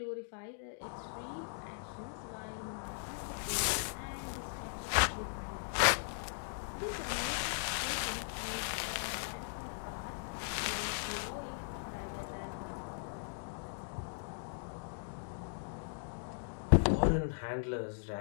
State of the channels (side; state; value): right; silent; digital silence